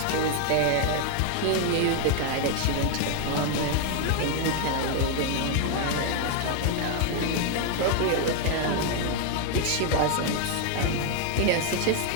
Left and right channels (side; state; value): both; different; correlation 0.00